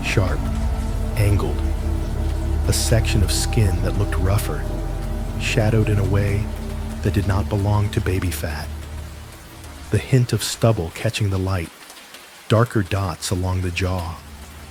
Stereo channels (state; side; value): identical; both; correlation 1.00